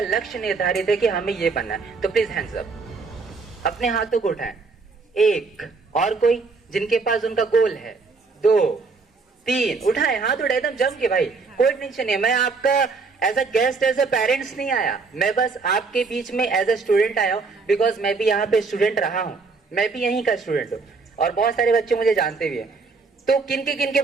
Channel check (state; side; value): quieter; left; 4.4 dB